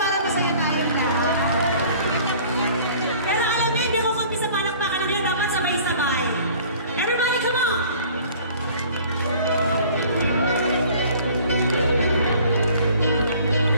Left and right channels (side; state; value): both; inverted; correlation -0.50